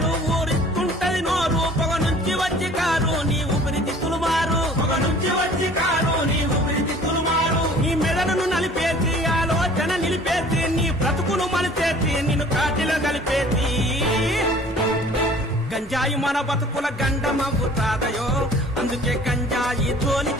ఊరిస్తుంటది నోరు, పొగ నుంచి వచ్చి కారు నీ ఊపిరితిత్తులు మారు, పొగ నుంచి వచ్చి కారు నీ ఊపిరితిత్తులు మారు. నీ మెదడును నలిపేసి ఆలోచన నిలిపేసి, నీ బ్రతుకును మలిచేసి నిన్ను కాటిలో కలిపేసి. గంజాయి మన బతుకుల గండమవుతాదయో, అందుకే గంజాయి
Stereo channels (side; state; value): both; normal; correlation 0.49